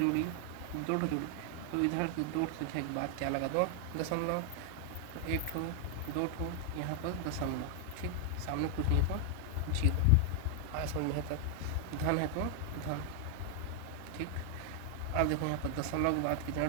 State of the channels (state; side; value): different; both; correlation 0.00